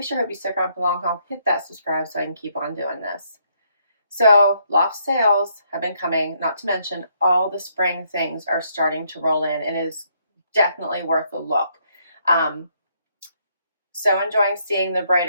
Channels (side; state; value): both; inverted; correlation -0.71